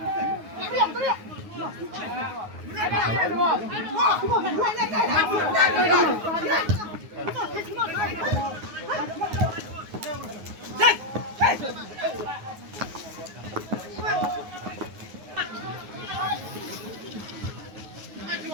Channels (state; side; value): late; left; 9.5 ms